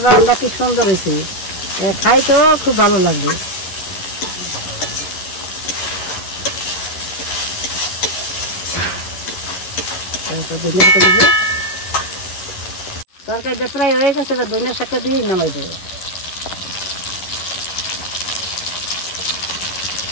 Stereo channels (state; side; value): late; right; 11 ms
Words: রান্না কি সুন্দর হয়েছে, খাই তো খুব ভালো লাগবে। তরকারিটা প্রায় হয়ে গেছে, ধনিয়া শাকটা দিয়ে নামাই দেবো।